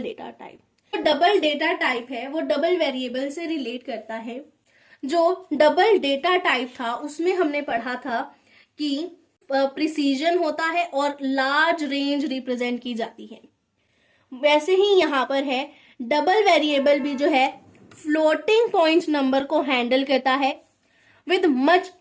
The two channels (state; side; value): identical; both; correlation 1.00